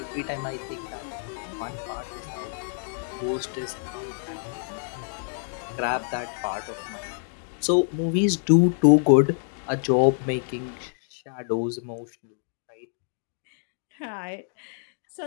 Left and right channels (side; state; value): right; silent; digital silence